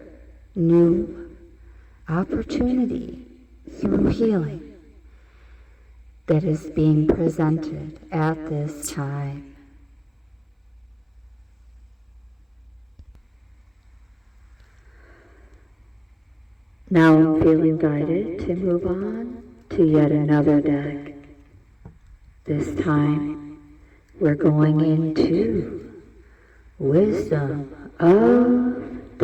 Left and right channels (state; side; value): identical; both; correlation 1.00